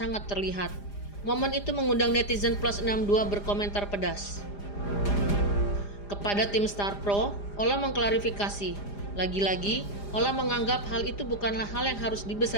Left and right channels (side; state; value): right; late; 4.9 ms